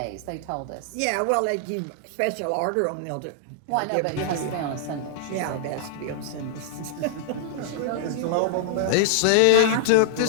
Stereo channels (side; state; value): both; different; correlation -0.01